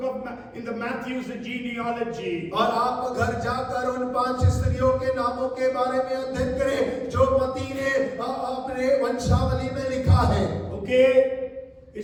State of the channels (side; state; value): both; identical; correlation 1.00